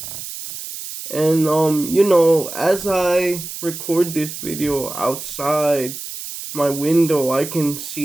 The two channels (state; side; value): noise; right; hiss, 9 dB below the sound